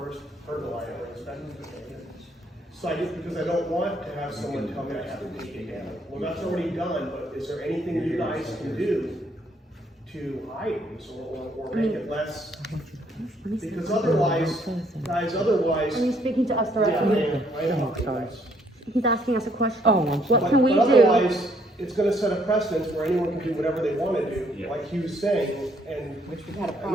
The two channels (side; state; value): both; normal; correlation 0.67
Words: pergola I ever inspected. So I just, because I don't want to have someone come in and have to take it down. Well, that's already done, but is there anything you guys can do to hide this or make it less? Because otherwise, guys, Are you speaking to us yeah, directly? I know, guys. He's asking us a question. Oh, I'm sorry. What can we But do? otherwise, it's gonna set a precedence where anyone can do whatever they wanna do, Yeah. like he was saying, and Which we've had a and